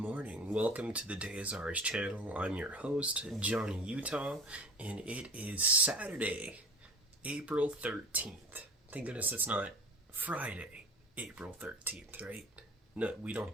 Welcome to the TheDayIsOurz channel. I'm your host, Johnny Utah, and it is Saturday, April 13th. Thank goodness it's not Friday, April 13th, right? No, we don't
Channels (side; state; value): both; normal; correlation 0.38